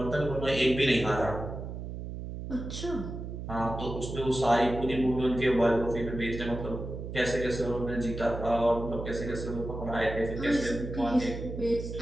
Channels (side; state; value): right; noise; hum, 7 dB below the sound